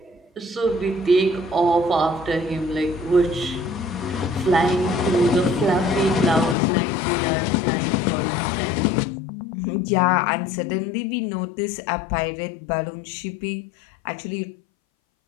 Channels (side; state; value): right; drops out; at 6.6 s